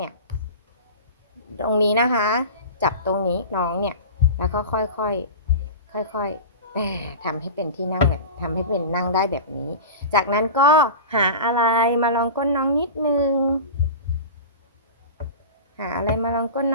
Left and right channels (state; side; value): inverted; both; correlation -0.31